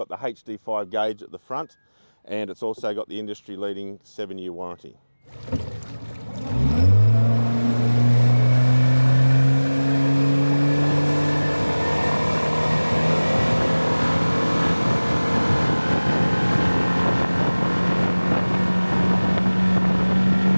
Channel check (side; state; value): both; inverted; correlation -1.00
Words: the HD5 gauge at the front, and it's also got the industry leading 7-year warranty.